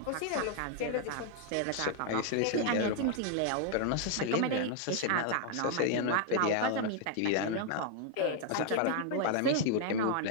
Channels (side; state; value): both; different; correlation 0.00